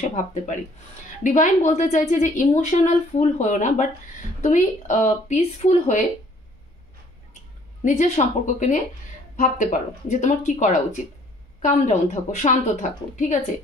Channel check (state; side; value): normal; both; correlation 0.59